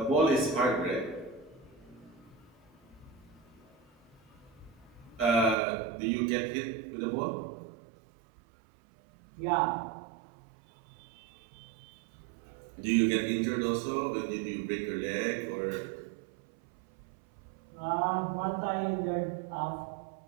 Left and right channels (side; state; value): left; drops out; at 5.6 s